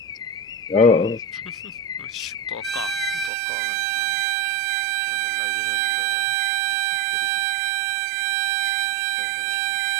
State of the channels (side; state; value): left; drops out; at 3.3 s